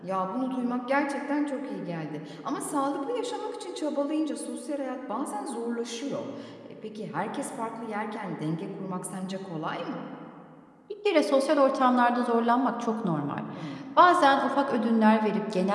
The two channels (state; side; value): identical; both; correlation 1.00